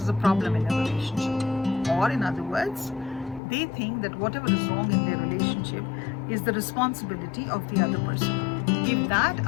as a problem in a relationship. Or in other words, they think that whatever is wrong in their relationship is the responsibility of the other person. If that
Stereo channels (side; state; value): right; drops out; at 3.4 s